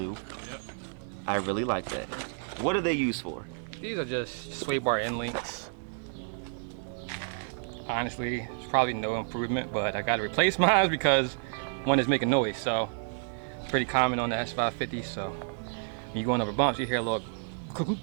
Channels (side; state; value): left; silent; 58 dB below the other